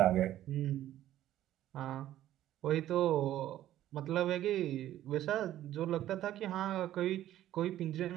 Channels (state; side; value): quieter; left; 13.0 dB